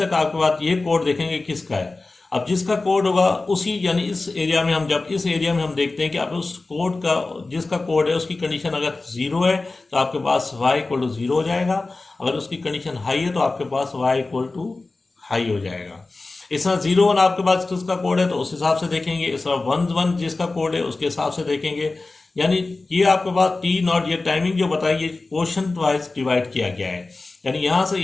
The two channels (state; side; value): quieter; right; 3.4 dB